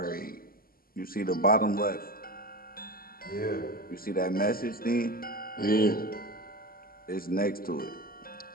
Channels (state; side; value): late; right; 0.42 ms